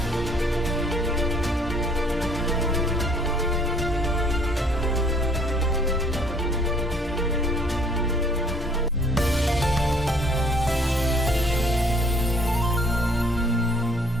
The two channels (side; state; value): both; normal; correlation 0.60